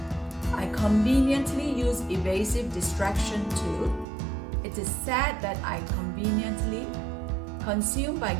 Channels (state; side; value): drops out; left; at 4.0 s